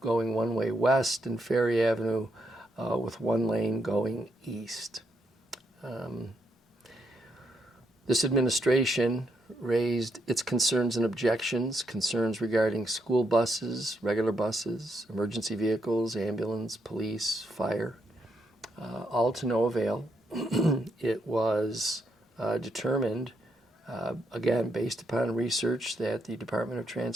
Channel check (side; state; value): both; normal; correlation 0.78